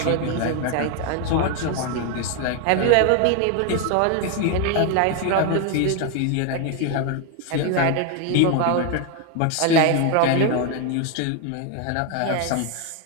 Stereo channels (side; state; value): both; different; correlation 0.01